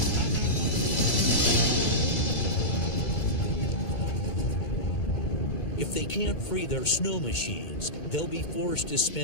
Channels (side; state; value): right; late; 2.0 ms